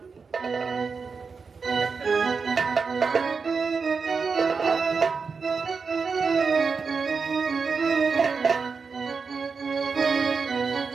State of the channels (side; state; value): left; quieter; 5.1 dB